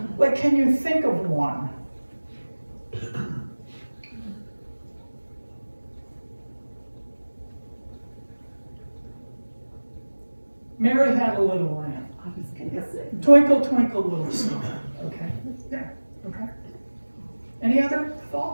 like, can you think of one? Mary Had a Little Lamb. Twinkle, twinkle, little star. Okay, yeah, okay. Any other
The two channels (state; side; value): inverted; both; correlation -1.00